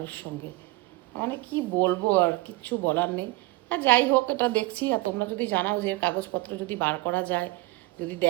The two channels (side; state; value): left; quieter; 20.8 dB